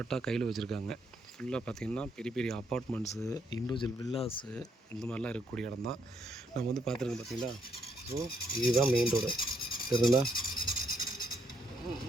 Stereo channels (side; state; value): both; normal; correlation 0.74